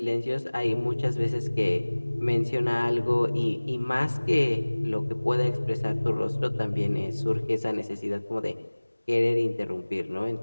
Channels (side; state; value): both; inverted; correlation -1.00